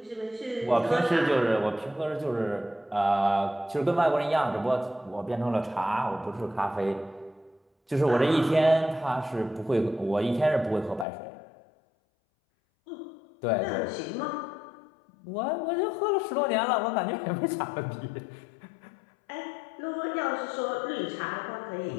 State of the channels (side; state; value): right; drops out; at 11.1 s